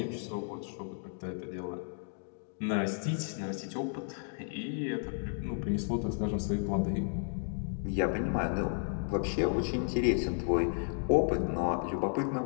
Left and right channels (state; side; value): silent; right; 56 dB below the other